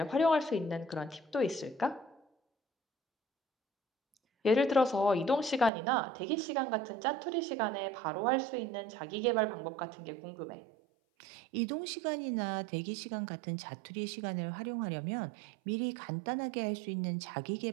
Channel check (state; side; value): drops out; left; at 5.7 s